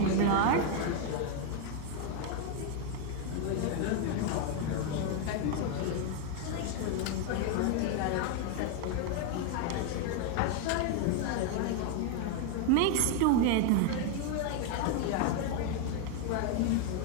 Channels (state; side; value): different; both; correlation 0.01